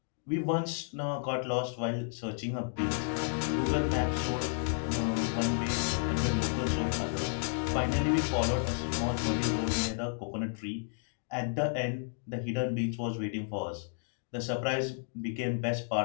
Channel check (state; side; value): silent; right; digital silence